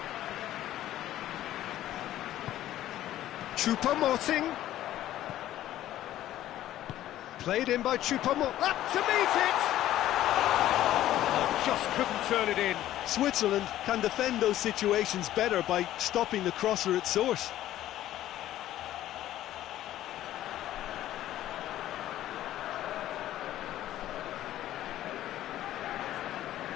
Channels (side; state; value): right; quieter; 13.3 dB